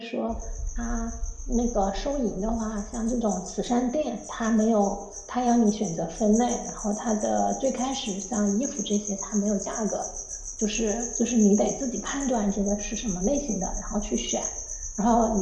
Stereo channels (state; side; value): identical; both; correlation 1.00